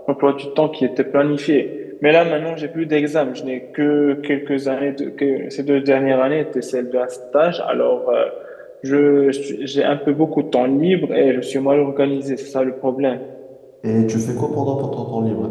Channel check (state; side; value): identical; both; correlation 1.00